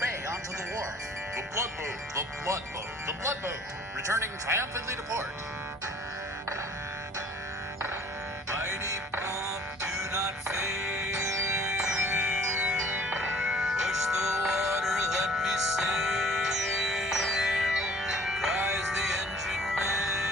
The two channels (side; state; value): both; normal; correlation 0.52